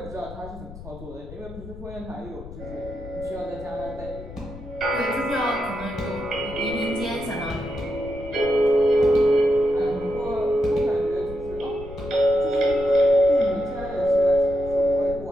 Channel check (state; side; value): noise; left; rumble, 14 dB below the sound